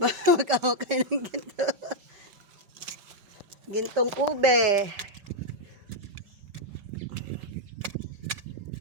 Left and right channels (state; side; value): late; left; 5.2 ms